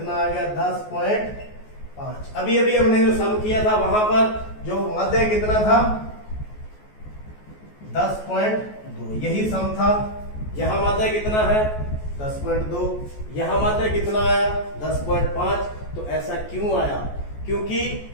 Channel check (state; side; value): late; right; 14 ms